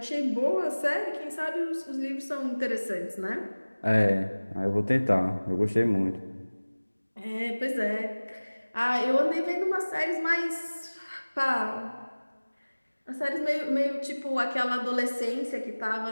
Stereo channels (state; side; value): inverted; both; correlation -1.00